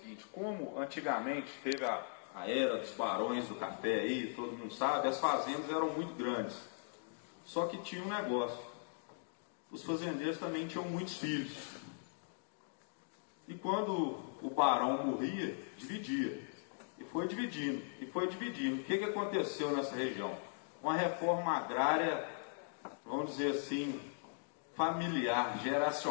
como antigamente teve a era dos barões do café aí, todo mundo sabe, as fazendas eram muito grandes. Só que tinha um negócio: os fazendeiros também tinham muitos filhos. E quando o barão morria, dividia. E foi dividindo, e foi dividindo. O que aconteceu nessa região? Uma reforma agrária, vamos dizer assim, familiar,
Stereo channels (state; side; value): silent; right; digital silence